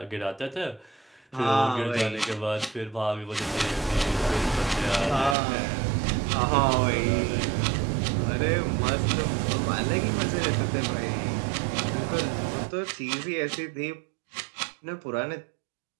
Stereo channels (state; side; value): drops out; left; at 5.4 s